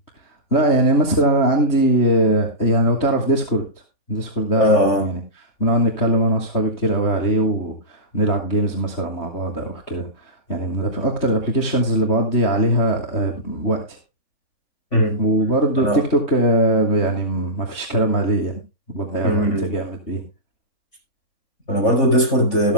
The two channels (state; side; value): late; right; 3.2 ms